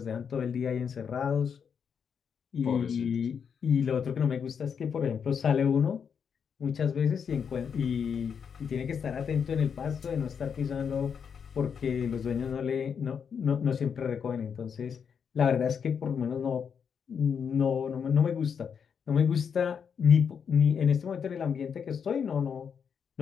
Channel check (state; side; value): quieter; right; 6.9 dB